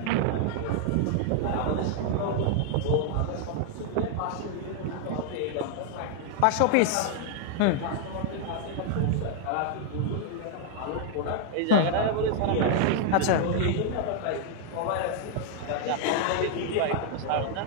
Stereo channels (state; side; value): different; both; correlation 0.00